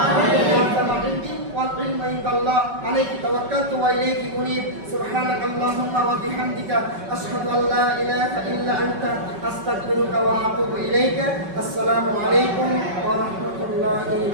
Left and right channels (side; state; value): left; late; 5.3 ms